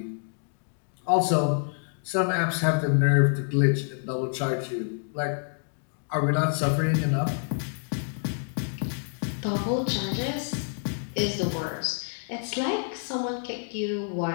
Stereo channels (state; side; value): silent; right; 60 dB below the other